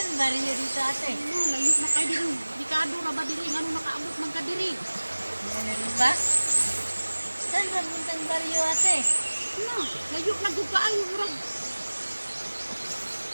bariya dito ate? No, layo na kay diri. Dikado ra ba diri ngano nakaabot man ka diri? Ano ba? Saan ba puntang bariya ate? Na, layo na gud kaayo murag.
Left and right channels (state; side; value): inverted; both; correlation -1.00